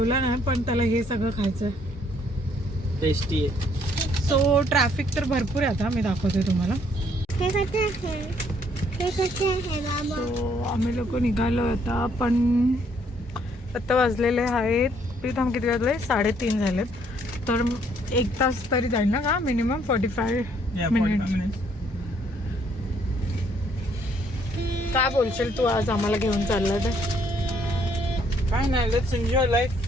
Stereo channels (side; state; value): both; normal; correlation 0.66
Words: नाही पण त्याला हे सगळं खायचं. टेस्टी आहे. सो ट्रॅफिक तर भरपूर आहे. आता मी दाखवते तुम्हाला. सो आम्ही लोक निघालो आता, पण आता वाजलेले आहेत प्रीतम किती वाजले? 3:30 झालेत. तर 1 तास तरी जाईल ना का मिनिमम? 45 मिनिट. काय बोलशील तू आज आम्हाला घेऊन चालला तर? काय नाही, let's enjoy life.